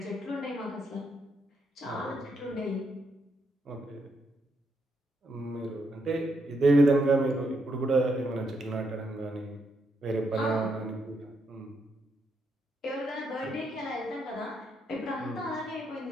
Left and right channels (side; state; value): both; normal; correlation 0.78